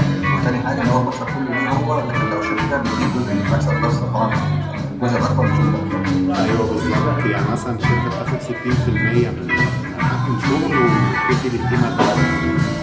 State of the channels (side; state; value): both; identical; correlation 1.00